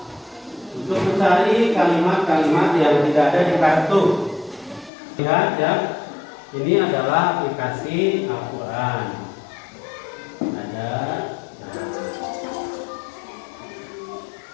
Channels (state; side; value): drops out; right; at 4.9 s